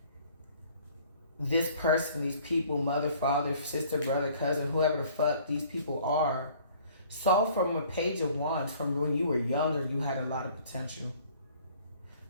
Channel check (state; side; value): inverted; both; correlation -0.55